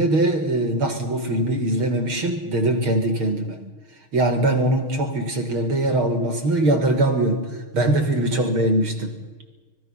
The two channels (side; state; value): left; late; 6.4 ms